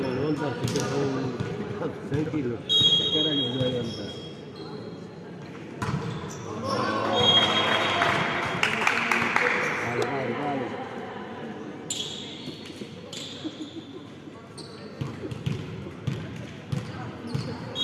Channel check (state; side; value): identical; both; correlation 1.00